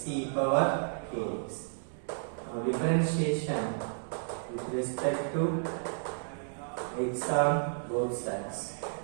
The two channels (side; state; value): left; silent; digital silence